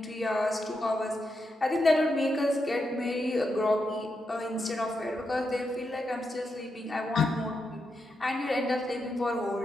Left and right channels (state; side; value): normal; both; correlation 0.85